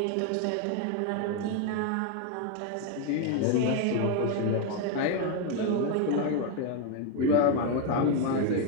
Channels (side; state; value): both; different; correlation 0.01